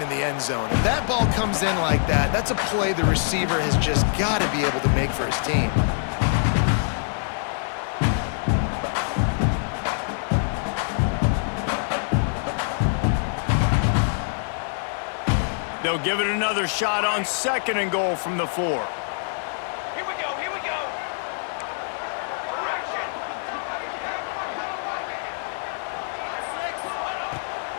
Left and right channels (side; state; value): right; silent; 62 dB below the other